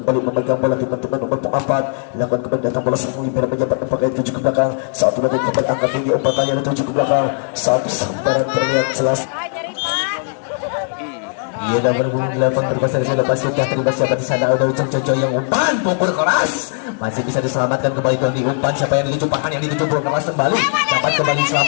memegang bola teman-teman nomor 4. Lakukan kembali datang bola sang Libero menyambut umpan itu juga belakang. Satu lagi kembali angkat tinggi umpan kali itu juga belakang. Satu sementara terlihat jelas. Ia dah berbunyi di lapang berkasar sudah sudah terlibat siapa di sana udah Ujang Jojo yang umpan pukul keras masih bisa diselamatkan kembali Doni umpan siapa yang dituju Pahan yang dituju pukul keras kembali dapat kembali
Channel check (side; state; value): right; silent; 59 dB below the other